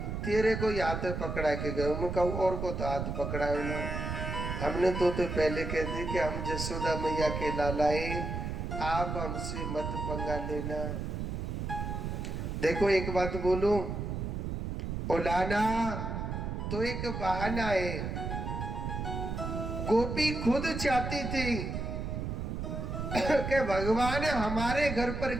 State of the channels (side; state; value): right; noise; rumble, 3 dB below the sound